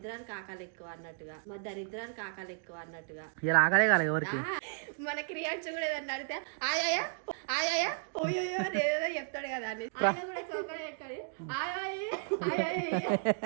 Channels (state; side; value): silent; left; digital silence